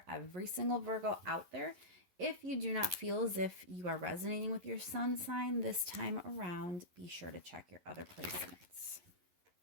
every single Virgo out there. If you do not feel as if you are resonating with your sun sign this time around, be sure to check your other placements.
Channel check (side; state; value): left; late; 11 ms